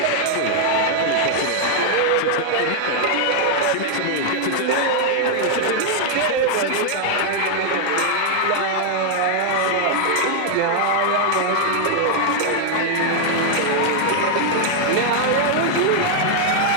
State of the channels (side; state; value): both; different; correlation 0.00